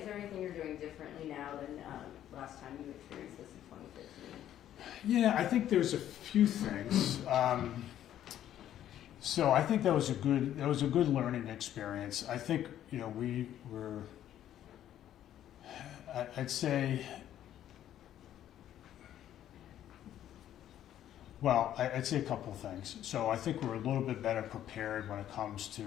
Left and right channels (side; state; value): right; quieter; 11.4 dB